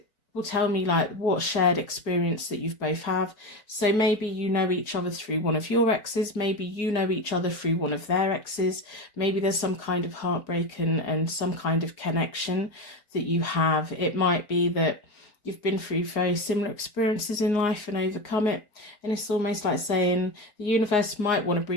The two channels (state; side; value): late; right; 4.8 ms